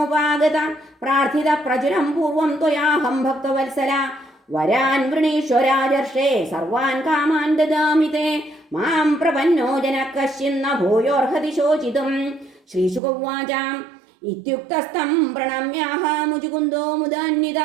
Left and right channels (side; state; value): left; drops out; at 13.0 s